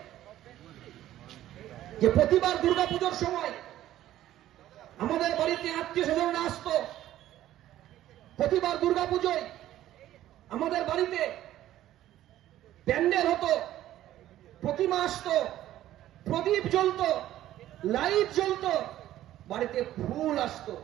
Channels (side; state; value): left; quieter; 13.4 dB